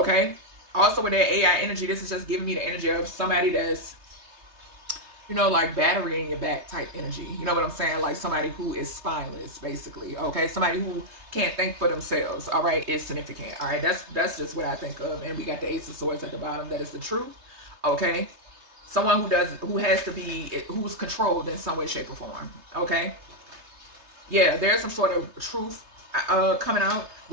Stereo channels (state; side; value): late; left; 3.3 ms